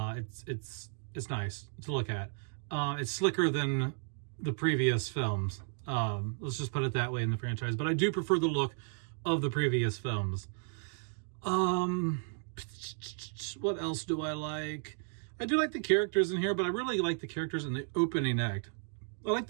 nice to look at. It's slicker than the previous films. Let's just put it that way in the franchise. But I do prefer the look of the previous films. What else do I like? I do like the characters in here, but I really like the characters in the opening act. I like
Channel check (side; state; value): left; silent; 55 dB below the other